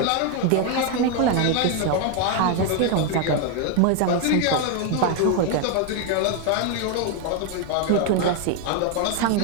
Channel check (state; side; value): different; both; correlation 0.01